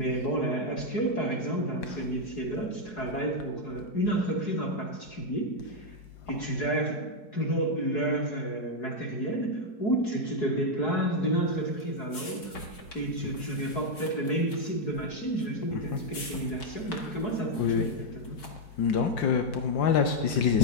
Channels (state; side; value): late; right; 5.3 ms